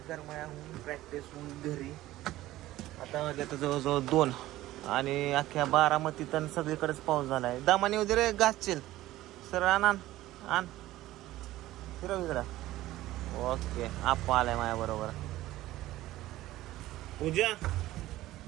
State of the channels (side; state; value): left; quieter; 15.8 dB